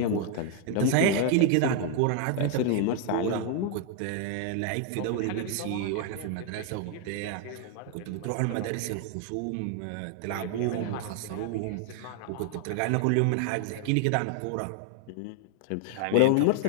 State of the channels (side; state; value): both; different; correlation 0.00